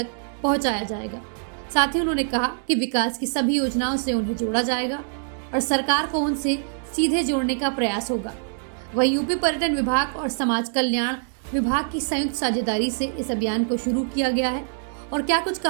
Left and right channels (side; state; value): left; silent; digital silence